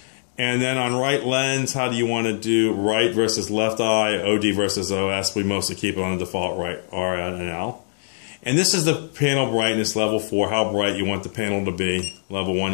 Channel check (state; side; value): silent; right; digital silence